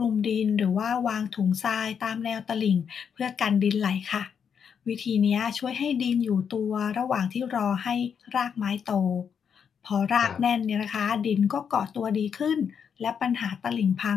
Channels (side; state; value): right; quieter; 7.2 dB